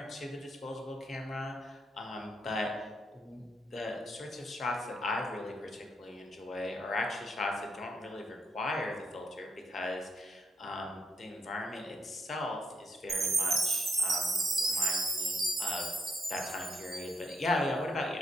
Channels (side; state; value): both; normal; correlation 0.77